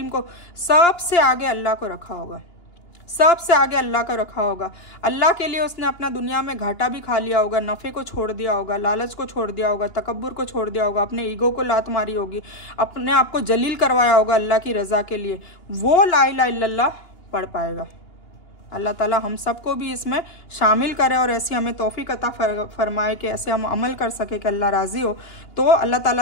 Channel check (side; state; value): right; late; 2.8 ms